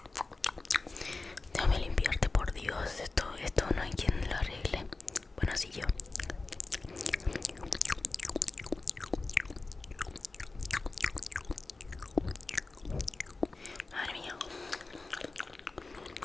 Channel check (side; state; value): right; quieter; 3.6 dB